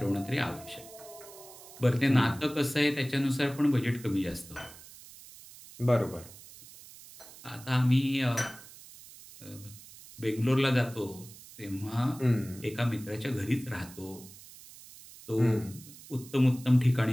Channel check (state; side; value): noise; right; hiss, 19 dB below the sound